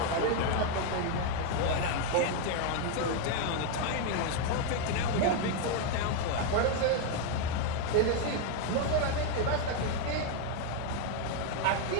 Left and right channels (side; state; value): both; different; correlation 0.01